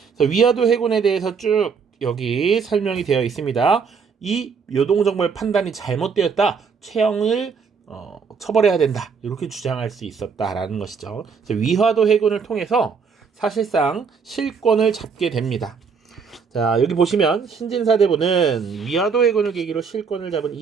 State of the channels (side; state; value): left; quieter; 5.7 dB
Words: 그래서 위화도 해군에 대해서 쭉 여기 설명이 되어 있습니다. 이 요동정벌 판단이 잘못되었다. 최영을 처벌해야 된다 이렇게 주장할 수 있었다라는 것이죠. 위화도 해군을 통해서 사실상 실권을 잡게 됩니다. 자, 여기 보시면 신진사대부는 위화도 해군을 계기로 실권을 잡은